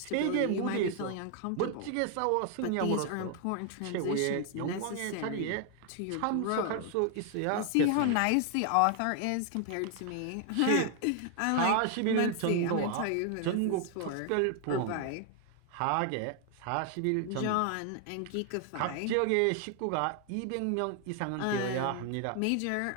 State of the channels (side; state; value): both; different; correlation 0.00